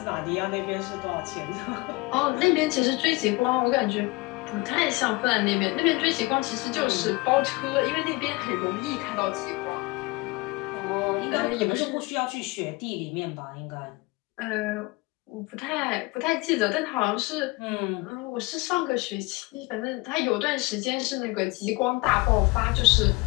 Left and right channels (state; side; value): quieter; right; 24.5 dB